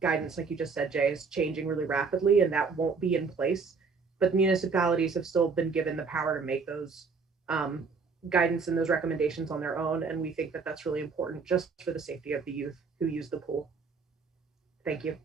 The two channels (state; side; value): quieter; left; 4.9 dB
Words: guidance, like you just said, Jay, is changing really rapidly, and that won't be in place. But municipalities have still been given the power to make those guidance and those recommendations on their own. And we think that that's really important just for the safety of the youth who use the pool. Thank you.